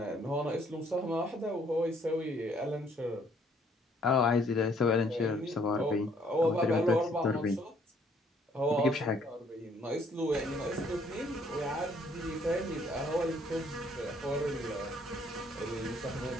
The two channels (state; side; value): normal; both; correlation 0.64